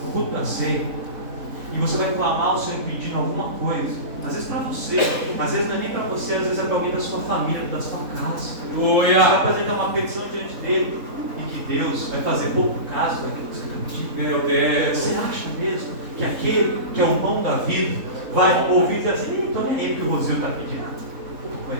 no culto da ceia, e você vai clamar ao Senhor pedindo alguma coisa, às vezes para você, às vezes não é nem para você, às vezes é para alguém da sua família, da sua casa. Você vai apresentar uma petição diante dele, e que Deus vai fazer pouco caso daquilo que você está pedindo. Meu Deus. Você acha mesmo que aquele que é o pão da vida vai ouvir e dizer assim, então nem é ele que o Rosil está pedindo? Não,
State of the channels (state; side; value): late; left; 3.7 ms